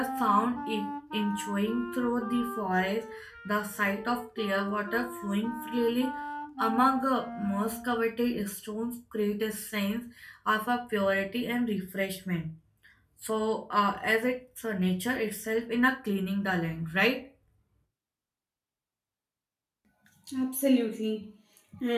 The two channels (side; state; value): both; identical; correlation 1.00